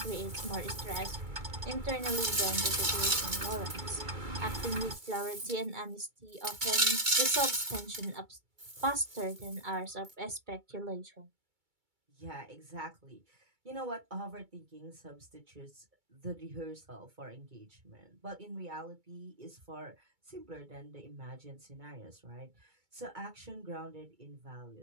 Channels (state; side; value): late; left; 2.3 ms